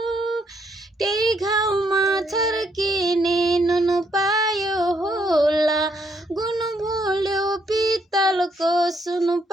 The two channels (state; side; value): normal; both; correlation 0.73